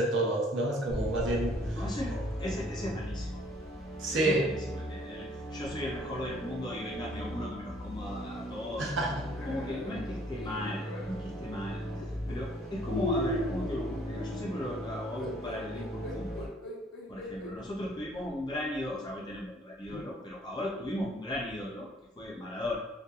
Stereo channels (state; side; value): normal; both; correlation 0.60